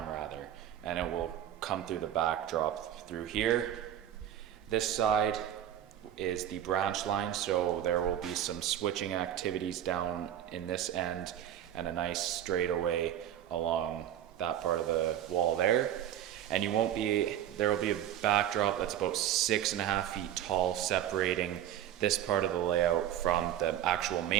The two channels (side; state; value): left; quieter; 11.2 dB